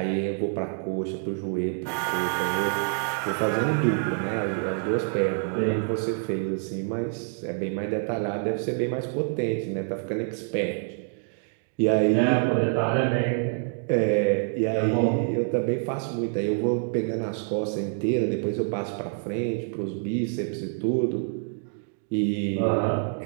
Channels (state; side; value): silent; left; 59 dB below the other